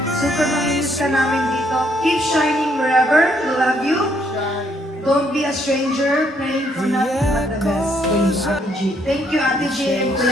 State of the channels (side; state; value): both; normal; correlation 0.70